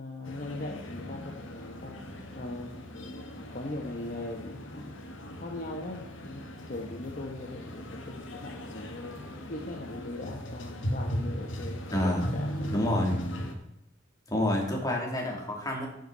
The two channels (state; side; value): normal; both; correlation 0.66